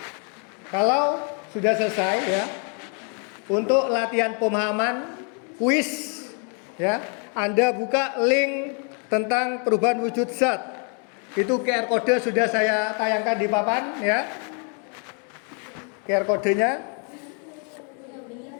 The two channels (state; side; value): quieter; right; 39.8 dB